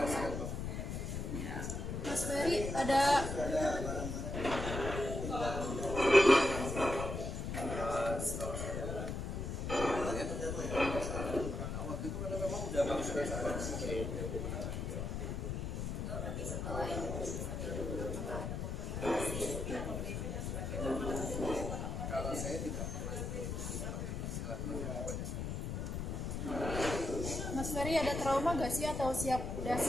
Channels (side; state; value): left; noise; rumble, 3 dB below the sound